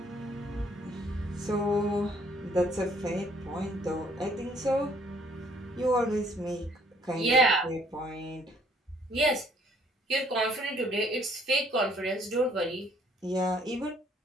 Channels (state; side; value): normal; both; correlation 0.62